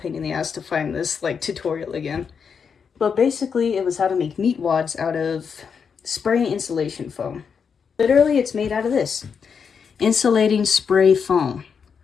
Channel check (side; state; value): right; quieter; 6.4 dB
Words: in the ass to find this tutorial again. But basically, it was how to make meat wads out of spray insulation foam. Literally, it's made out of this. Insulating spray foam.